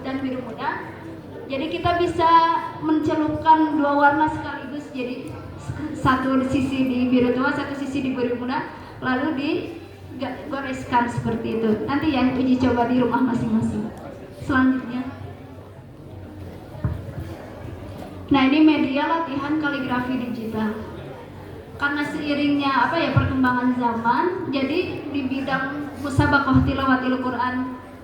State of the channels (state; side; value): identical; both; correlation 1.00